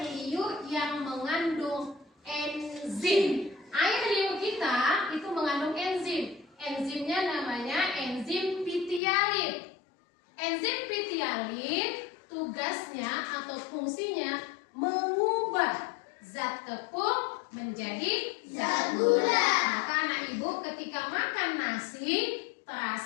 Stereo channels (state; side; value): drops out; right; at 9.0 s